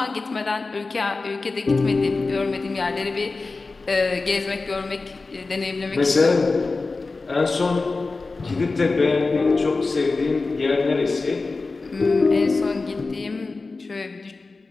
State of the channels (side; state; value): right; quieter; 3.8 dB